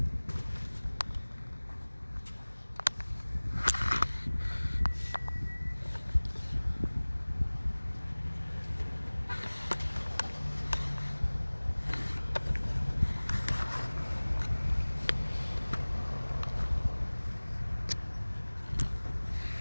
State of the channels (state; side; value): inverted; both; correlation -1.00